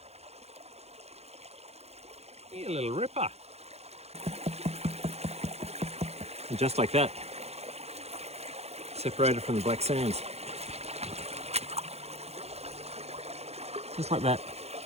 Hey, a little ripper. And just like that, separated from the black sands. Just like that.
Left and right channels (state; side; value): late; left; 0.31 ms